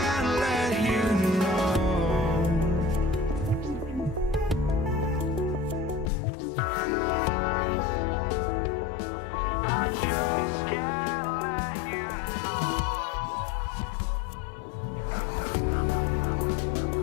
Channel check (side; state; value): right; drops out; at 6.1 s